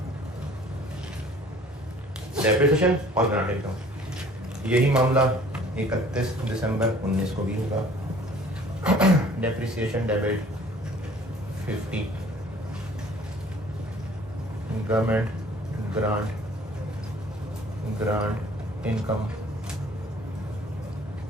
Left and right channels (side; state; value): both; normal; correlation 0.52